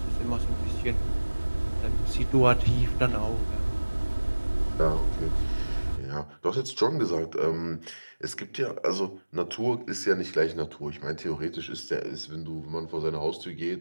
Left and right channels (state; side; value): inverted; both; correlation -1.00